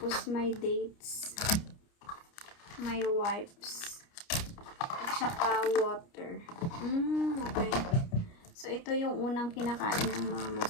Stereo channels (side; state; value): right; late; 29 ms